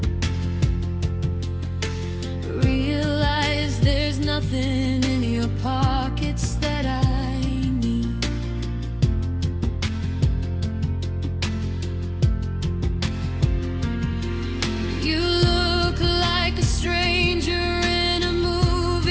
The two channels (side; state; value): both; identical; correlation 1.00